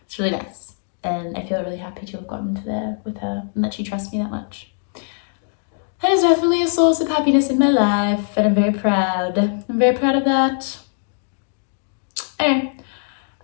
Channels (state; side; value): silent; right; digital silence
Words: It's really nice. And I feel really happy to have gotten to there with her and that she trusts me that much. That is definitely a source of happiness in my life and I'm very proud. I'm very proud of that. Anyway,